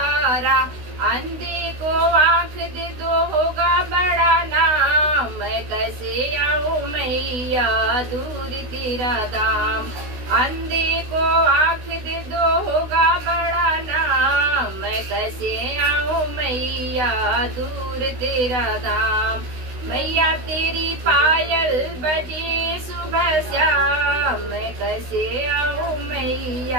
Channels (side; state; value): left; late; 16 ms